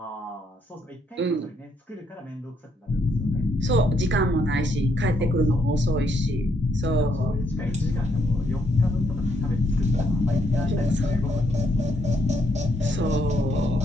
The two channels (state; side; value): normal; both; correlation 0.74